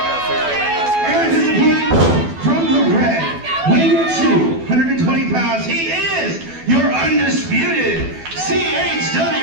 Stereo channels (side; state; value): left; late; 12 ms